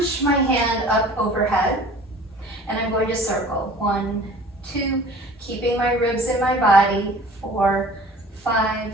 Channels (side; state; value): both; normal; correlation 0.46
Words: my hand up overhead. And I'm going to circle. 1, 2, keeping my ribs in my body. 4, 5,